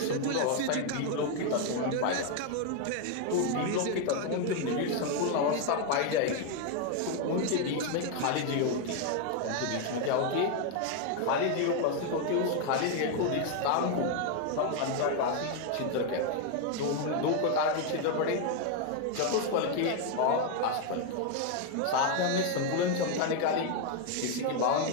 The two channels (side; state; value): both; different; correlation 0.01